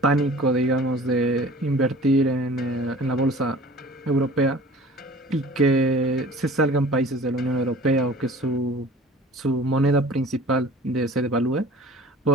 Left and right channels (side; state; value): both; normal; correlation 0.45